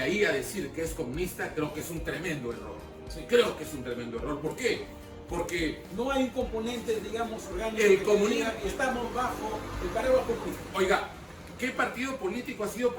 a decir que es comunista, creo que es un tremendo error. Sí. Creo que es un tremendo error. ¿Por qué? Porque no hay un componente, digamos, orgánico. El comunismo. Estamos bajo el paraguas comunista. Oiga, ¿qué partido político ha sido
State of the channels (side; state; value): both; identical; correlation 1.00